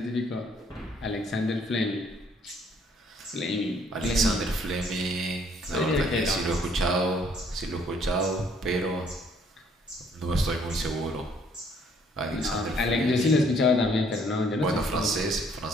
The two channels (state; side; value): normal; both; correlation 0.63